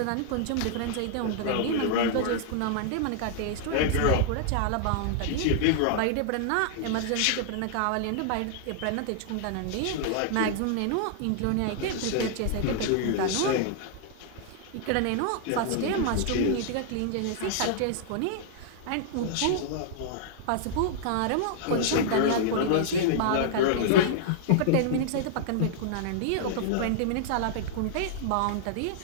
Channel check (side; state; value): both; different; correlation -0.01